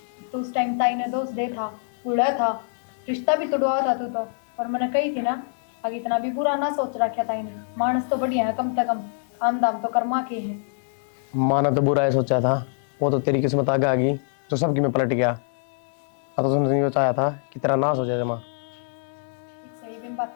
तो उस टाइम ताई ने दोस्त दे था, बूढ़ा था, रिश्ता भी तोड़वा था तू तो। और मैंने कही थी ना, आगे इतना भी बुरा ना सोच रखा ताई ने, मानस तो बढ़िया है, कम से कम काम दाम तो कर्मा के है। माना तो बुरा है सोचा था, वो तो तेरी किस्मत आगे आ गई तो सबकी में पलट गया। अब तो तुमने ये चाहा था कि तेरा नाश हो जाए जमा। सही बिन बात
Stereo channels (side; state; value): right; silent; 62 dB below the other